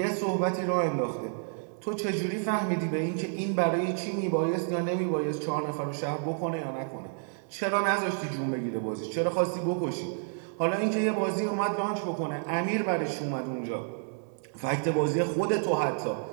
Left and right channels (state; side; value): silent; left; 57 dB below the other